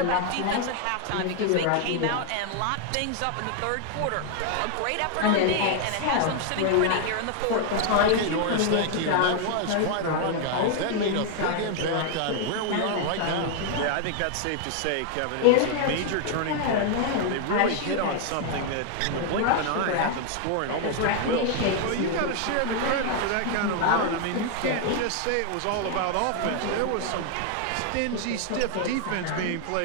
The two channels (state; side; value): different; both; correlation 0.00